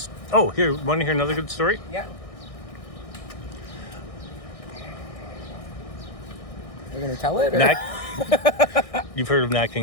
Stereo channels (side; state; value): right; late; 1.6 ms